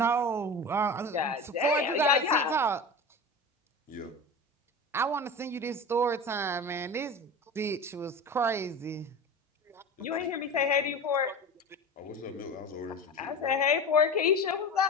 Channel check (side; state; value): both; normal; correlation 0.30